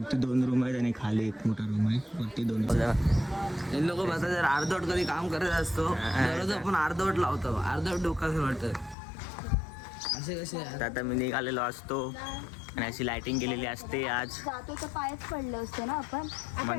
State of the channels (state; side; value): drops out; right; at 9.0 s